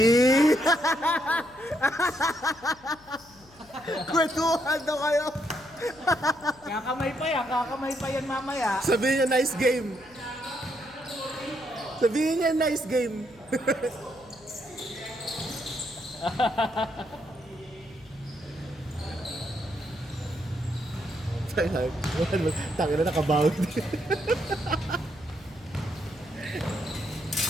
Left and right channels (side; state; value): left; noise; hum, 26 dB below the sound